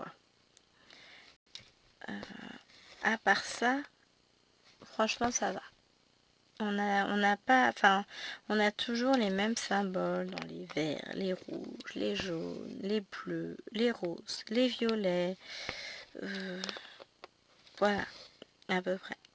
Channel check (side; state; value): both; identical; correlation 1.00